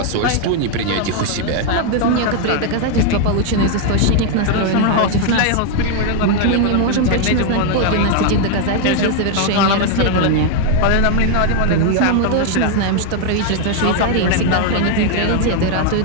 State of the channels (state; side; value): different; both; correlation 0.00